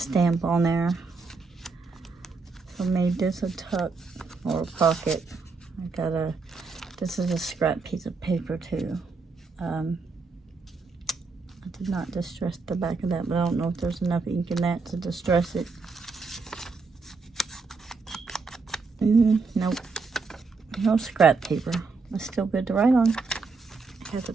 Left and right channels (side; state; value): left; quieter; 4.4 dB